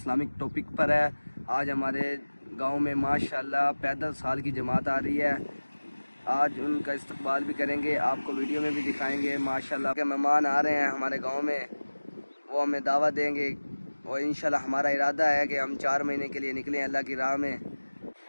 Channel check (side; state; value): both; inverted; correlation -1.00